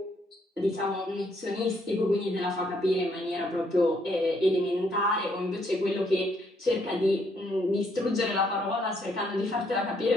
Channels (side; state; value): both; normal; correlation 0.71